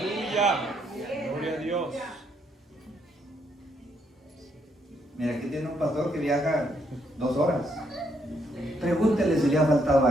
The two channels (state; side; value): normal; both; correlation 0.74